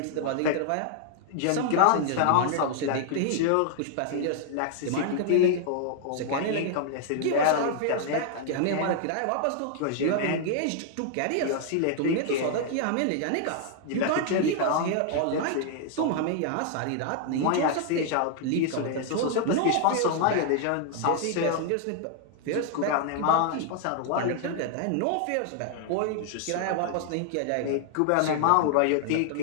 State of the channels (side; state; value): both; different; correlation 0.00